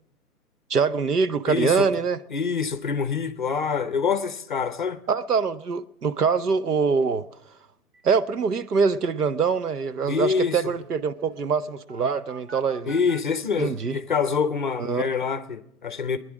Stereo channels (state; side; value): normal; both; correlation 0.43